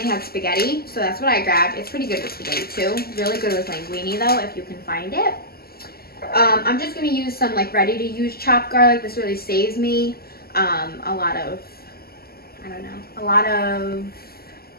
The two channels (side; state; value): right; late; 0.45 ms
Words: had spaghetti, so that's what I grabbed. It's pretty good with spaghetti too. Really good with linguine though, if you can find it. I'm just going to use some like ready-to-use chopped garlic. This really saves me